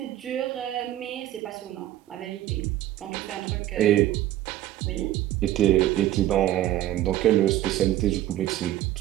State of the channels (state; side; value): quieter; left; 13.6 dB